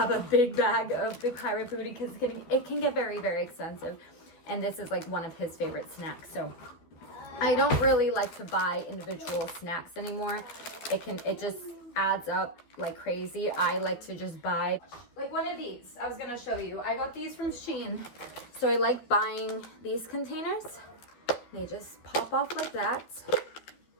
a big bag of the Pirate Booty because it can get very, very expensive. And this is one of his favorite snacks. So I don't really like to buy individual snacks anymore. It just adds up like crazy. I like to just buy one of these. I was gonna show you. I got these from Shein. So I like buying these containers. They just pop off like that.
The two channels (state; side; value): late; right; 12 ms